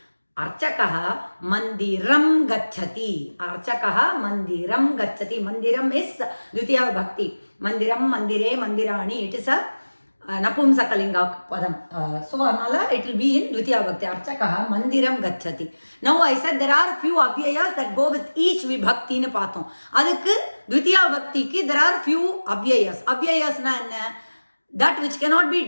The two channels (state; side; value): inverted; both; correlation -1.00